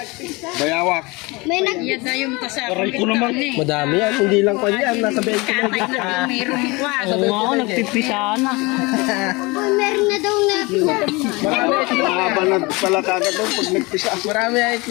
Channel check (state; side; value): quieter; right; 25.0 dB